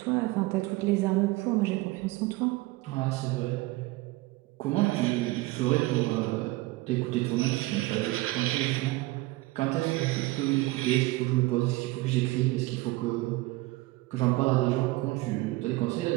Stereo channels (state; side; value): quieter; left; 20.1 dB